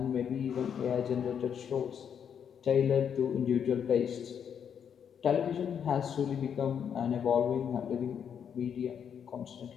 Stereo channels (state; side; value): quieter; right; 7.9 dB